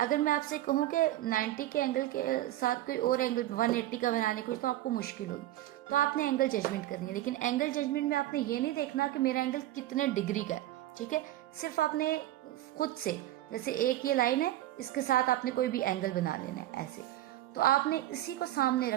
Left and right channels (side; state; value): left; quieter; 14.6 dB